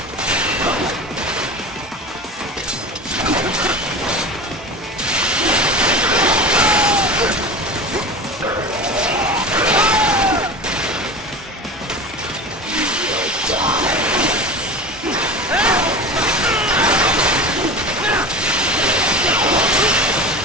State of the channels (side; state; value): both; normal; correlation 0.31